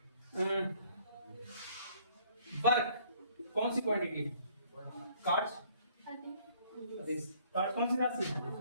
वर्क कौन सी क्वांटिटी है? कार्ड्स कार्ड कौन सी राशि है?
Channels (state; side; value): inverted; both; correlation -0.60